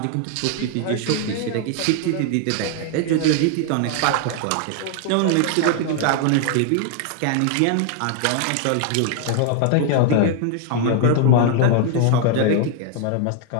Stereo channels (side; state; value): both; different; correlation 0.00